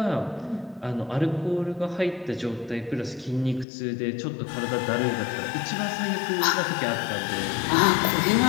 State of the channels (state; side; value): drops out; right; at 3.7 s